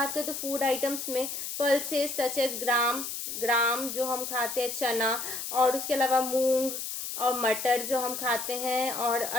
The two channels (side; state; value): left; noise; hiss, 5 dB below the sound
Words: करें तो फूड आइटम्स में पल्सेस सच एज ग्राम जो हम खाते हैं, चना, और उसके अलावा मूंग और मटर जो हम खाते हैं, और